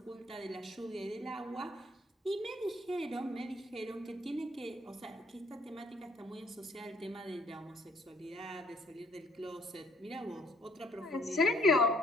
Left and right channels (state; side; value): normal; both; correlation 0.64